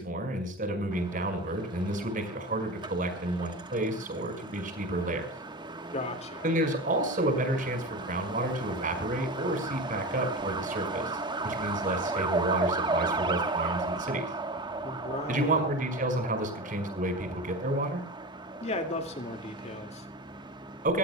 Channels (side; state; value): both; normal; correlation 0.28